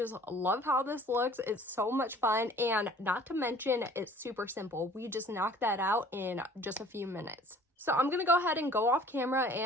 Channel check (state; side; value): normal; both; correlation 0.51